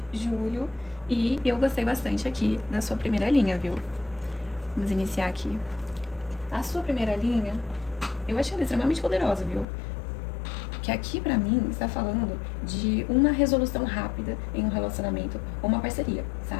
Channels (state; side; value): drops out; right; at 9.7 s